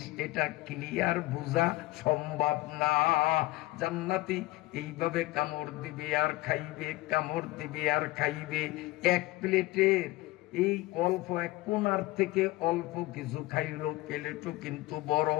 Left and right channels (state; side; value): quieter; right; 19.0 dB